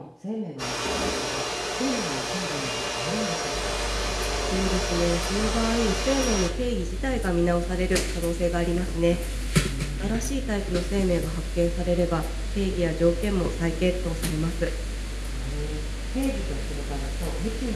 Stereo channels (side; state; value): both; identical; correlation 1.00